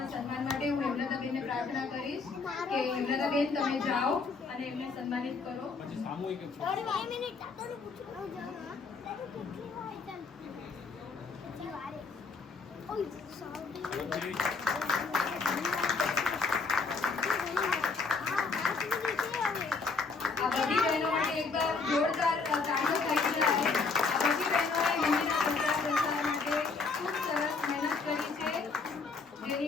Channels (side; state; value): right; quieter; 4.4 dB